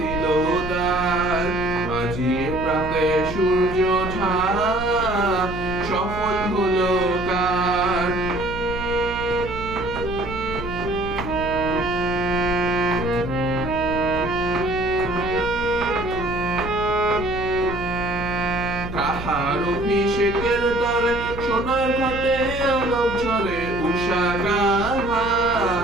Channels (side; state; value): right; noise; hum, 10 dB below the sound